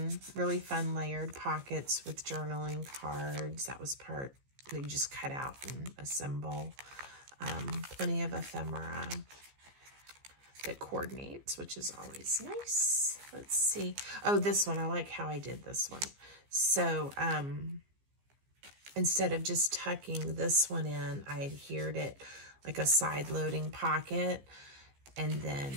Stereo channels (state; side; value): late; left; 15 ms